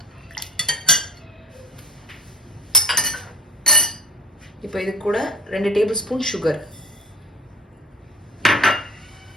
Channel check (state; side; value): normal; both; correlation 0.40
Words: இப்போ இது கூட 2 டேபிள் ஸ்பூன் சுகர்,